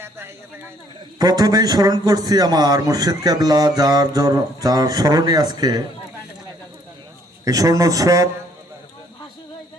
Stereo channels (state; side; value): normal; both; correlation 0.64